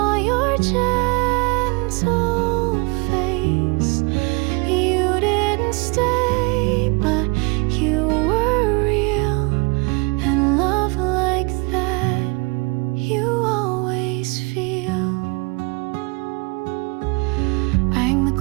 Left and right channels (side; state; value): left; quieter; 29.2 dB